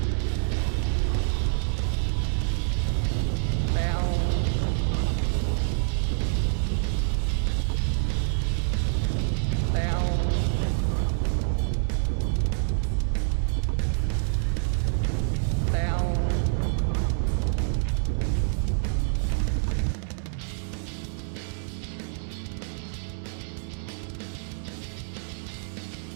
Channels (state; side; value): silent; left; 56 dB below the other